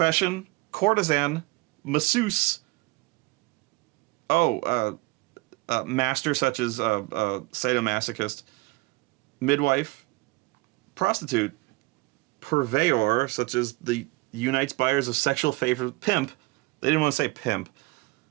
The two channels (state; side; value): quieter; left; 22.7 dB